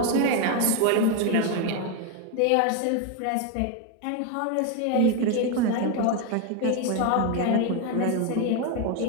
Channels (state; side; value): different; both; correlation 0.02